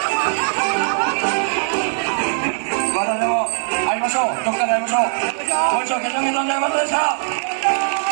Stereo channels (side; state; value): left; silent; 66 dB below the other